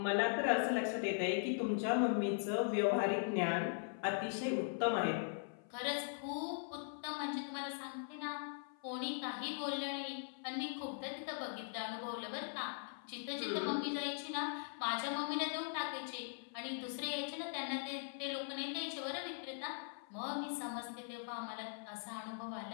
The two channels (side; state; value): right; silent; 51 dB below the other